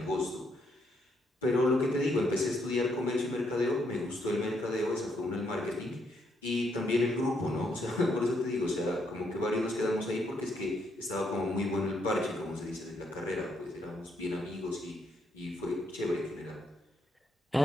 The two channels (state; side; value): normal; both; correlation 0.75